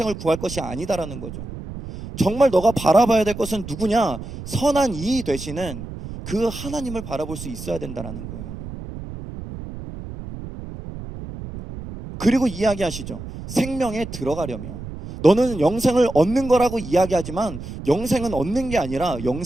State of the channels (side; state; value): right; noise; rumble, 10 dB below the sound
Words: 구할 것이 아니다라는 거죠. 정말 너가 바라봐야 될 것은 누구냐? 선한 이 되시는 그 하나님을 바라볼 수 있어야 된다라는 거예요. 그리고 이야기하시죠. 생명에 들어가려면 너는 영생을 얻는 거라고 이야기하지만 영생은 얻는 게 아니라